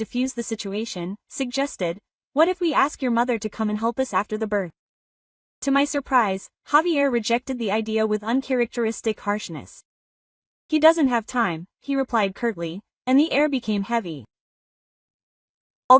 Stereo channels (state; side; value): identical; both; correlation 1.00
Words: the situation, suggested, "What if we ask your mother to come and help us after the birth?" To my surprise, Javier rejected the idea with uncharacteristic harshness. "He doesn't have time," he replied curtly, and the air became heavy.